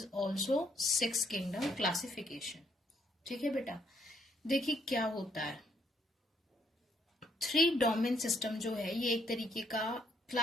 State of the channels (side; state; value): both; normal; correlation 0.71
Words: also 6 kingdom classification. ठीक है बेटा, देखिए क्या होता है। 3 डोमेन सिस्टम जो है ये एक तरीके का